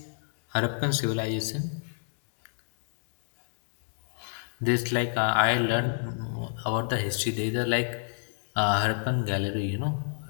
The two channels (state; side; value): silent; right; digital silence